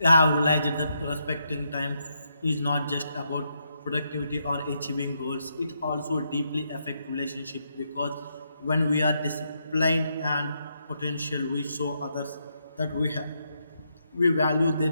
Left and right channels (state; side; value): inverted; both; correlation -0.79